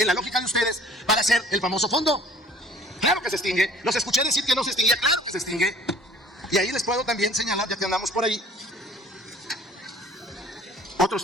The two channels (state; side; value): normal; both; correlation 0.52